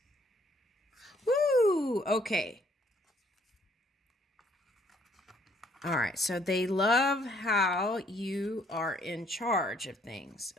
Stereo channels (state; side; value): normal; both; correlation 0.65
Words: Woo! Okay. All right, so they love how you are in charge of things.